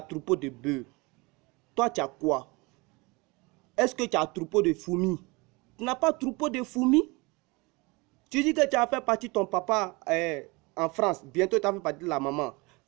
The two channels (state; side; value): quieter; left; 25.8 dB